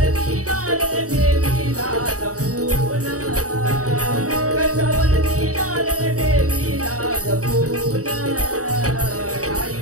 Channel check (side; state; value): left; late; 0.66 ms